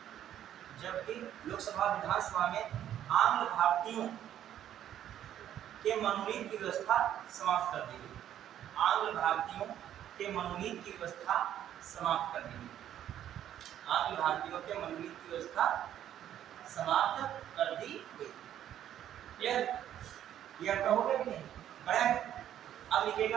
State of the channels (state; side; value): quieter; left; 11.0 dB